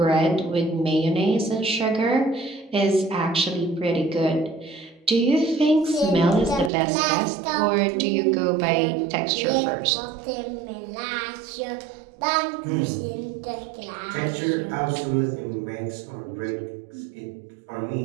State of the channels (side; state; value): left; drops out; at 6.7 s